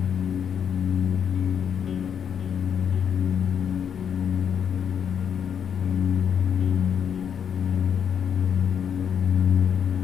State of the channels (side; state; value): right; quieter; 7.9 dB